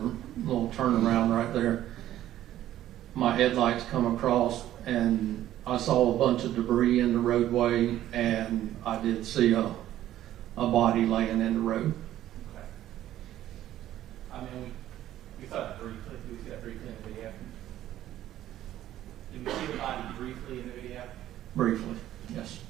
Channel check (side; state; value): left; quieter; 12.9 dB